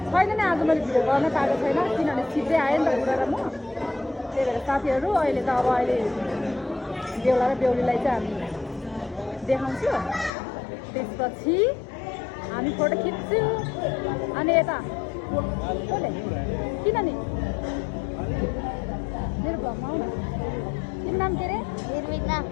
छैन नि आज मैले भिडियो गर्न पाएको छैन किनभने छिट्टै आयो नि त बुढा र म त्यही भएर साथीहरू अहिले त अब अहिले बेहुला र बेहुलीलाई चाहिँ हामी देखाउँछु त्यसपछि हामी फोटो खिच्छु अनि यता किन नि मेरो भ्लगमा आउनु तिम्रो नाम के अरे निर्मिता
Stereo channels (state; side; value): drops out; right; at 10.3 s